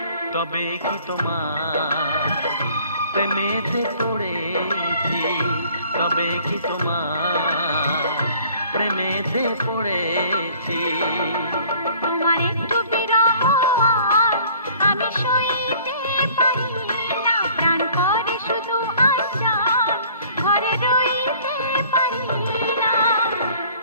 তবে কি তোমার প্রেমেতে পড়েছি, তবে কি তোমার প্রেমেতে পড়েছি। তোমার একটু বিরহ আর আমি সইতে পারি না, প্রাণ করে শুধু আশার ঘরে রইতে পারি না।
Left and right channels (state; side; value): inverted; both; correlation -0.53